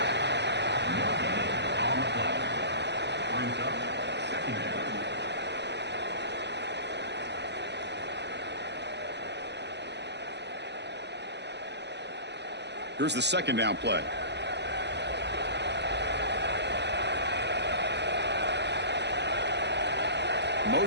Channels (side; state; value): left; late; 0.50 ms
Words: Here's the 2nd down play.